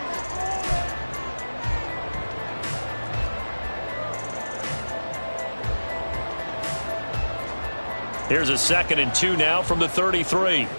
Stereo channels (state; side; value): inverted; both; correlation -1.00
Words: Here's a 2nd and 2 now from the 33.